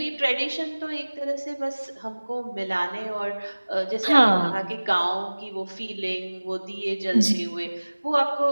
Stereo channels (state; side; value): inverted; both; correlation -1.00